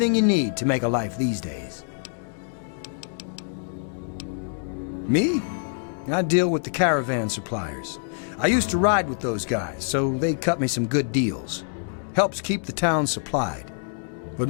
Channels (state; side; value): silent; right; digital silence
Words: you need to make a life these days. Me? I deal with the caravan suppliers. I used to ride with those guys, so they cut me some good deals. Helps keep the town supplied. But